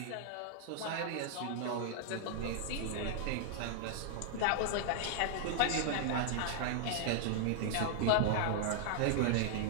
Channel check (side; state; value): both; different; correlation -0.01